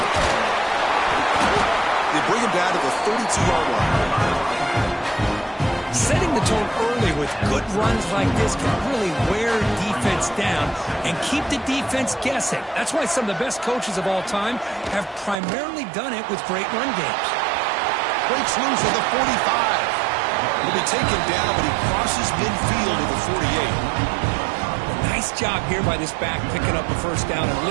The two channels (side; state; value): left; drops out; at 15.4 s